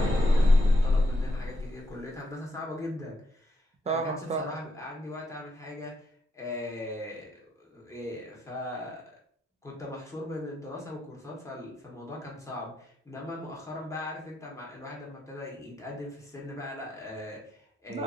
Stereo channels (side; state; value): both; normal; correlation 0.80